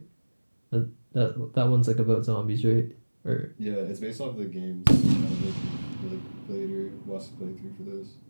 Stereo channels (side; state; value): both; inverted; correlation -1.00